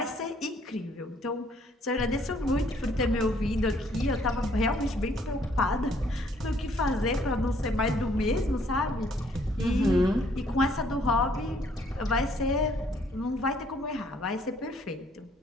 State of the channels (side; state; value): both; normal; correlation 0.64